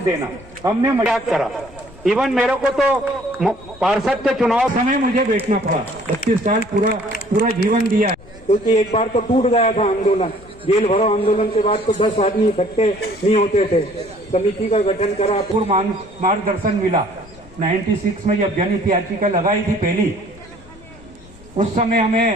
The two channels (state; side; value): noise; left; rumble, 22 dB below the sound